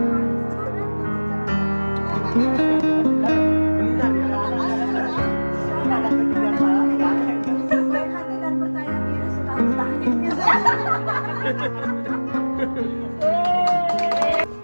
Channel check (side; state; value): both; inverted; correlation -1.00